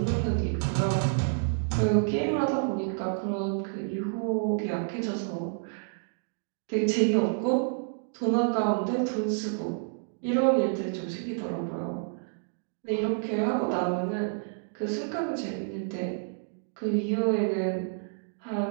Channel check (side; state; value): left; silent; digital silence